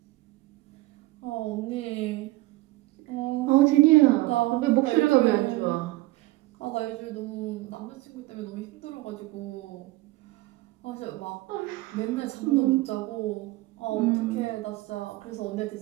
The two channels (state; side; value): quieter; left; 19.5 dB